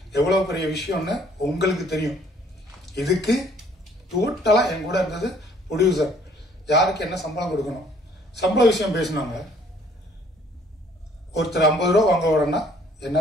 எவ்வளவு பெரிய விஷயம்னு உங்களுக்கு தெரியும். இதுக்கு டோட்டலா என் கூட இருந்தது ப்ரொடியூசர். யாருக்கு என்ன சம்பளம் கொடுக்கணும், சம்பள விஷயம் பேசினாங்க. ஒருத்தர் 50 ரூபா வாங்க வரேன்னா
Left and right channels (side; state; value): both; normal; correlation 0.59